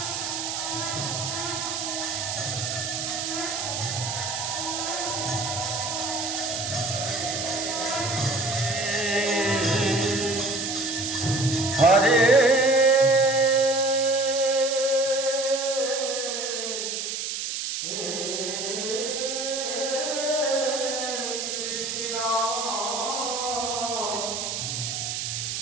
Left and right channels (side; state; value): right; noise; hiss, 3 dB below the sound